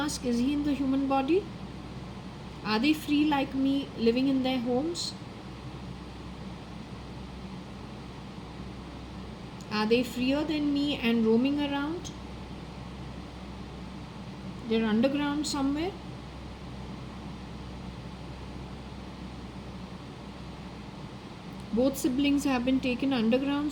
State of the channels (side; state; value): both; identical; correlation 1.00